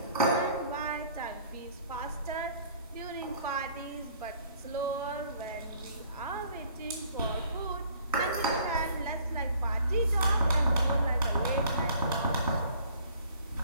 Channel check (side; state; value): both; inverted; correlation -0.55